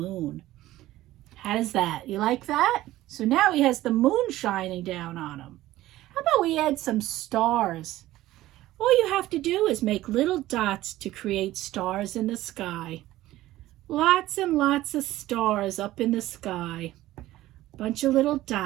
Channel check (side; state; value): left; quieter; 15.8 dB